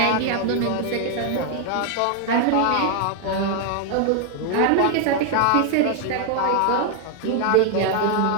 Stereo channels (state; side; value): different; both; correlation 0.00